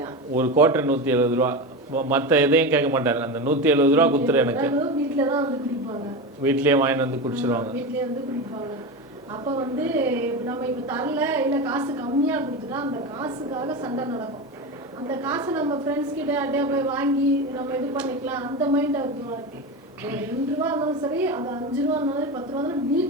கோட்டை 170 ரூபா. மற்ற எதையும் கேட்க மாட்டார். அந்த 170 ரூபா குத்துரு எனக்கு. வீட்லயே வாங்கிட்டு குடிச்சிருவாங்க. அப்போ நம்ம இப்போ தரல, இல்லை காசு கம்மியாக கொடுத்துட்டா அந்த காசுக்காக சண்டை நடக்கும். அந்த காசை நம்ம ஃப்ரெண்ட்ஸ் கிட்ட அப்படியே போய் வாங்கி நம்ம இது பண்ணிக்கலாம், அந்த மைண்ட் அவருக்கு இருக்கு. 2 ரூபா இருந்தாலும் சரி, அது 5 ரூபா இருந்தாலும் 10 ரூபா இருந்தாலும்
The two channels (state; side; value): normal; both; correlation 0.21